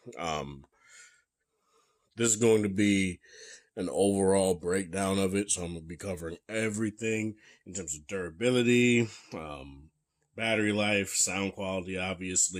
Um, this is going to be an overall breakdown of it, so I'm going to be covering everything in terms of durability, battery life, sound quality,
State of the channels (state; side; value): identical; both; correlation 1.00